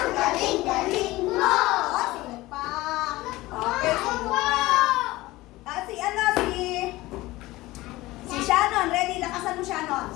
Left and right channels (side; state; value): right; quieter; 18.9 dB